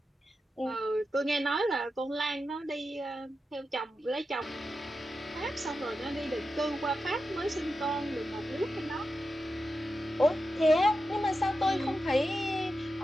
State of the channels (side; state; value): both; normal; correlation 0.90